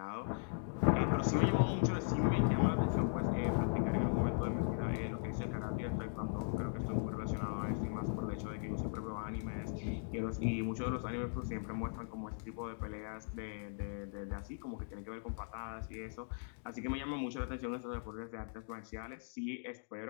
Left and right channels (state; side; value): silent; right; digital silence